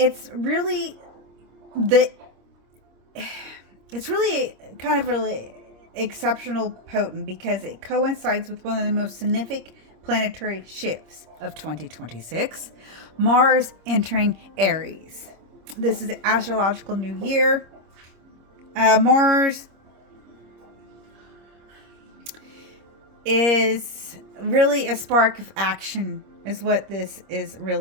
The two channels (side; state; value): left; late; 26 ms